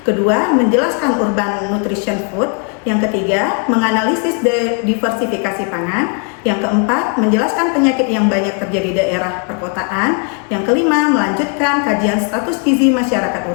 kedua, menjelaskan urban nutrition food, yang ketiga, menganalisis diversifikasi pangan, yang keempat, menjelaskan penyakit yang banyak terjadi di daerah perkotaan, yang kelima, melanjutkan kajian status gizi masyarakat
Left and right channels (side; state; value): right; quieter; 39.4 dB